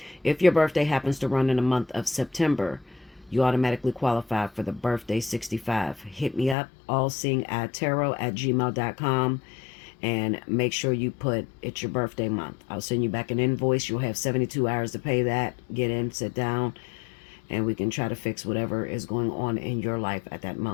If your birthday happens to run in the month of September, you automatically qualify for the birthday 65. Hit me up, allseeingeyetarot@gmail.com, and make sure you put it's your birthday month. I'll send you back an invoice. You'll have 72 hours to pay that. Get in, sit down, and we can try to fix whatever is going on in your life at that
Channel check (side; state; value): right; drops out; at 6.6 s